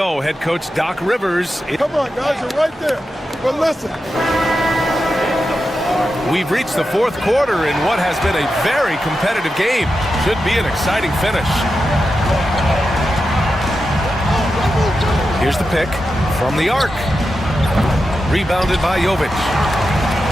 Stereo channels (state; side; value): normal; both; correlation 0.89